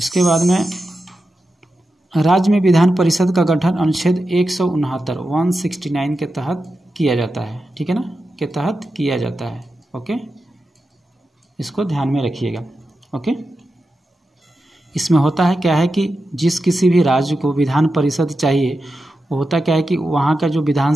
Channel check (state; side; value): normal; both; correlation 0.90